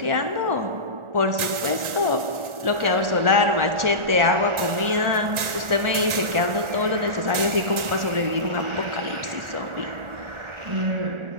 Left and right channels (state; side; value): late; left; 1.4 ms